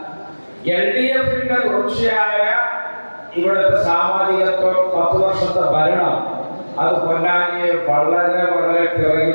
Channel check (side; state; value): both; inverted; correlation -1.00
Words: LDFന്റെ തുടർച്ചയായ ഇവിടുത്തെ സാമാജികത്വം, 10 വർഷത്തെ ഭരണം, അത് പൊന്നാനിയെ വളരെ വളരെ